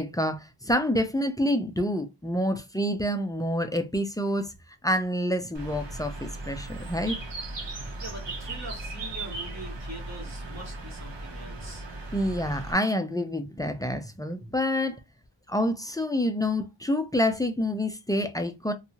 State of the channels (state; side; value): normal; both; correlation 0.61